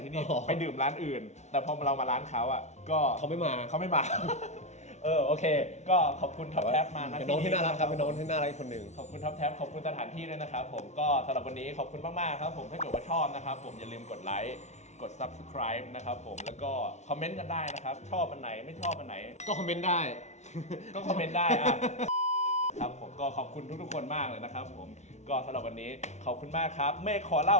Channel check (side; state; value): right; late; 0.32 ms